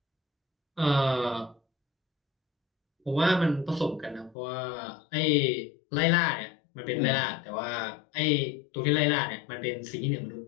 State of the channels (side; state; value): right; drops out; at 4.4 s